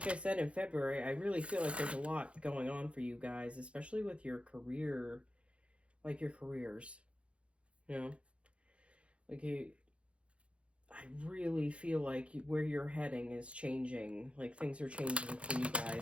I said, in February, I really feel like there's a lot going on for you guys, especially with your career, like your careers, you know? Like I really feel like where you're heading is changing. Like things are changing for you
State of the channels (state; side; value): late; left; 0.061 ms